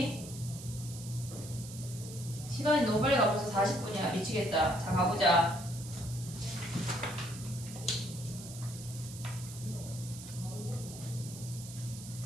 시간이 너무 빨리 가. 벌써 40분이야. 미치겠다. 자, 가보자.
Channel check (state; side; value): noise; right; hiss, 13 dB below the sound